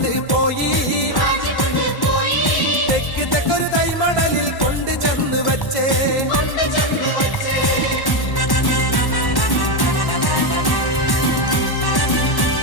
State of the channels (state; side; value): late; right; 1.1 ms